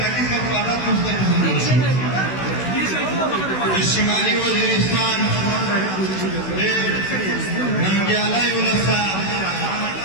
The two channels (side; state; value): right; late; 16 ms